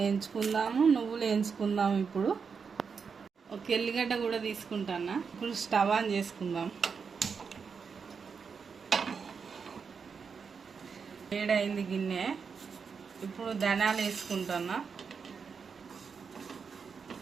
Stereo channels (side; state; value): left; quieter; 5.8 dB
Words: నువ్వులు వేయించుకుందాము. ఇప్పుడు ఒక ఎల్లిగడ్డ కూడా తీసుకుంటాను. ఇప్పుడు స్టవ్ ఆన్ చేసుకుందాం. వేడైంది గిన్నె. ఇప్పుడు ధనియాలు వేసుకుంటున్నా.